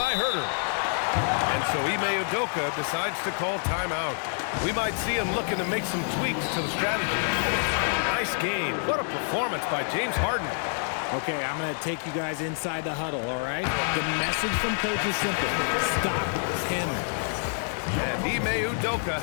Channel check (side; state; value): right; silent; 58 dB below the other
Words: Herter. And so Ime Udoka decides to call timeout. We might see him looking to make some tweaks to the strategy. Nice game. What a performance by James Harden. Okay, I'm going to take you guys inside the huddle, all right? The message from coach is simple. Stop him. And Ime Udoka